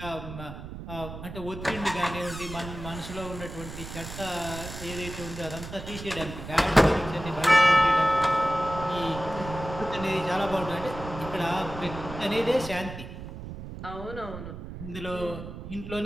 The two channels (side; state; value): right; noise; rumble, 10 dB below the sound